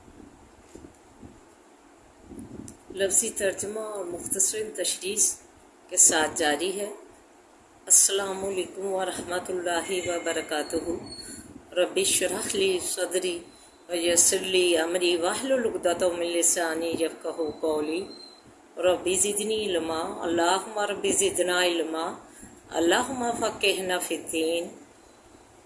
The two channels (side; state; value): both; identical; correlation 1.00